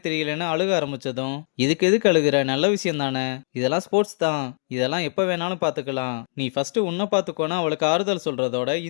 தெரியலன்னு அழுக ஆரம்பிச்சதும், இதுக்கு எதுக்கு அழுகுற, நல்ல விஷயம் தானே, இதெல்லாம் ஸ்போர்ட்ஸ் தான், இதெல்லாம் எப்ப வேணாலும் பாத்துக்கலாம், நீ ஃபர்ஸ்ட் உன்னை பாத்துக்கோனா அவளுக்கு ஆறுதல் சொல்றதோட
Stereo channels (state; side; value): silent; right; digital silence